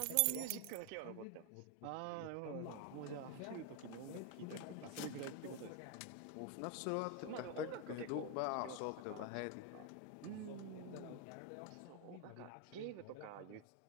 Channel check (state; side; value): different; both; correlation 0.01